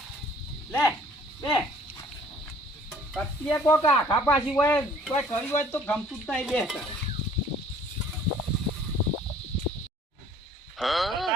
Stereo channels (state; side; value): normal; both; correlation 0.54